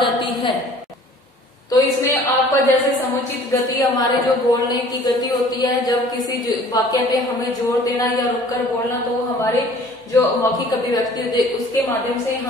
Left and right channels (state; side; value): normal; both; correlation 0.51